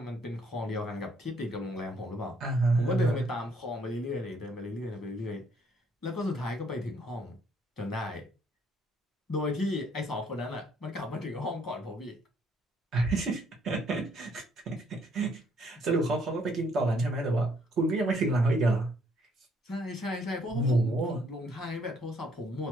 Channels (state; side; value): normal; both; correlation 0.67